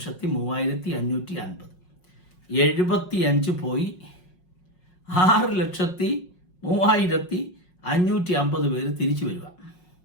75 പോയി 6,03,550 പേര് തിരിച്ചു വരിക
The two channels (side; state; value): right; late; 5.5 ms